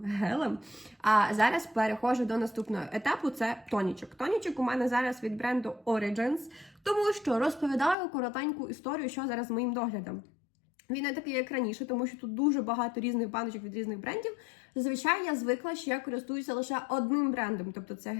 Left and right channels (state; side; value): drops out; right; at 8.0 s